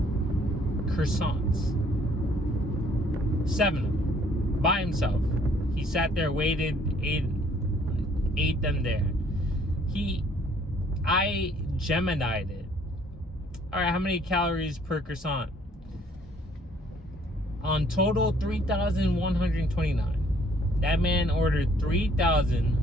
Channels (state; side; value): normal; both; correlation 0.62